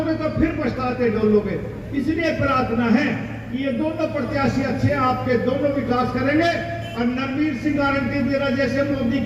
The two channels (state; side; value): identical; both; correlation 1.00